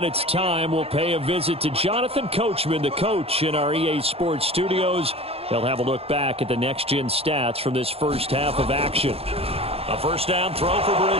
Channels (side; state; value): left; late; 0.29 ms